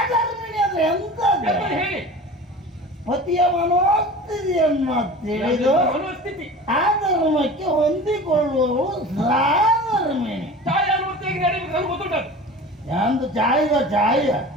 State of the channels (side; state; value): both; normal; correlation 0.37